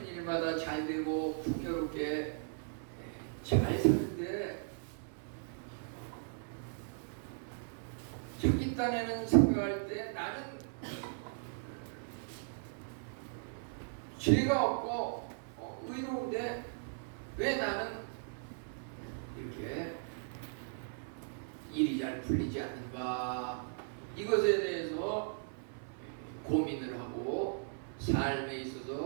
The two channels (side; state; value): left; silent; 53 dB below the other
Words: 일마다 잘 되고 풍요롭게 잘 사는데 자기 딴에는 생각할 때 나는 죄가 없고 의로운데 왜 나는 이렇게 일이 잘 풀리지 않는가, 이것에 대해서 고민을 하고 삶에